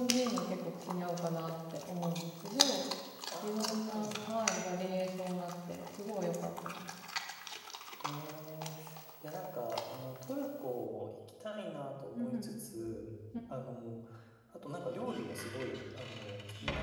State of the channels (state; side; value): identical; both; correlation 1.00